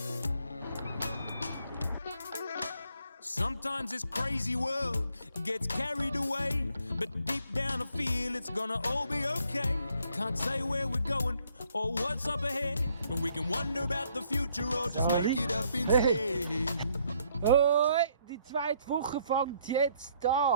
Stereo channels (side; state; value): both; inverted; correlation -0.68